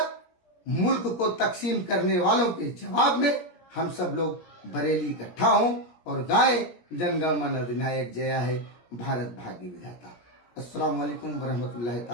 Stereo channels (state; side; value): late; right; 17 ms